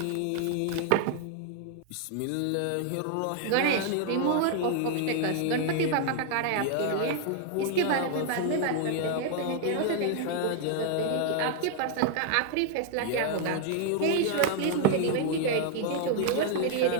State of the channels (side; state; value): both; different; correlation 0.00